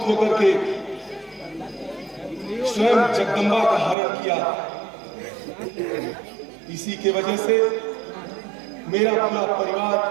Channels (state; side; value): drops out; left; at 4.0 s